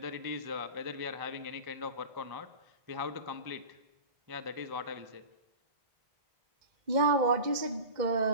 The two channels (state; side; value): late; left; 2.1 ms